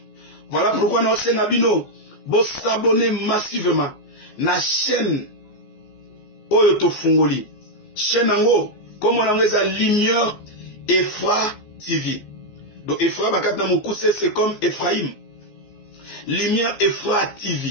Voilà pourquoi nous sommes Bino. Vous s'abonnez massivement à la chaîne Oyoto Fungoli. Chaîne Ango, comme on a la lumière et foi TV. Donc Ephra Bakata Moukousse, c'est comme Ephraim. Lumière Ephra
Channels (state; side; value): late; right; 14 ms